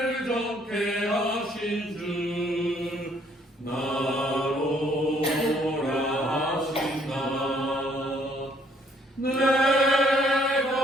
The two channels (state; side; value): normal; both; correlation 0.65